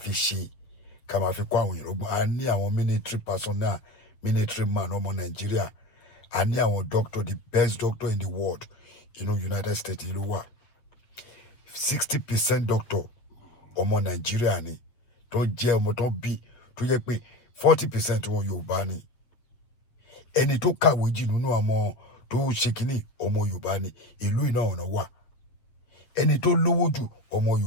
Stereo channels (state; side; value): late; right; 8.2 ms